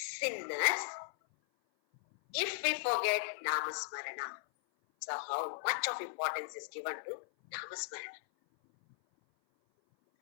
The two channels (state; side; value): silent; right; 53 dB below the other